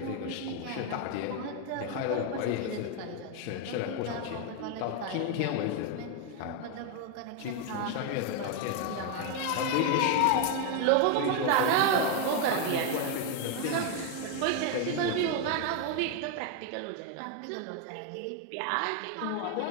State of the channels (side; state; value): both; different; correlation 0.01